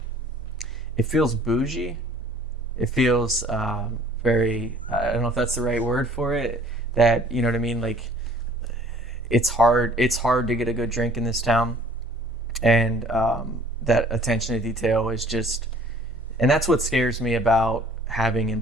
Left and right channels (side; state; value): both; normal; correlation 0.54